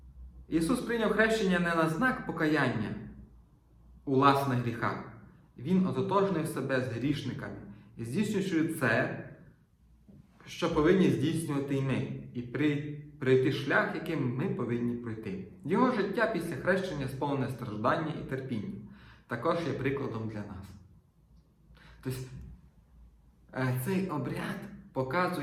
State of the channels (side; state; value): both; identical; correlation 1.00